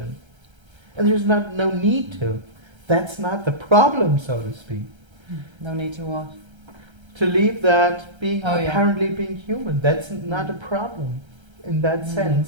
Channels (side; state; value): left; late; 1.3 ms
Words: there's no need to. That's not the problem, so to speak. No need to what? To leave that being Oh, yeah. apparently being human. That's not a problem in that